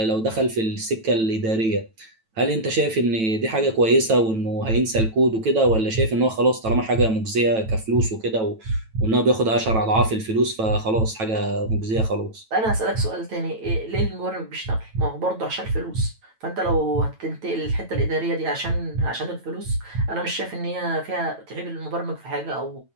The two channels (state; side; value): late; left; 9.1 ms